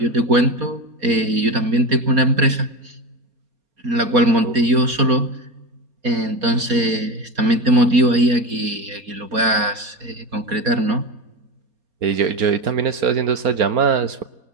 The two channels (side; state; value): left; late; 4.2 ms